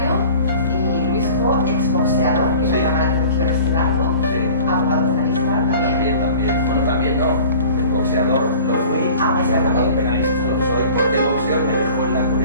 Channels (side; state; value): both; inverted; correlation -0.44